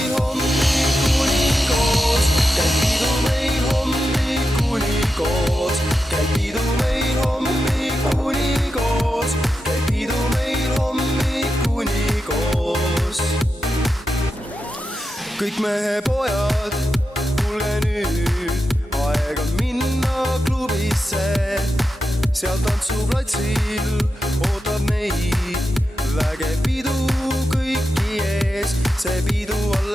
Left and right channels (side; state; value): both; normal; correlation 0.89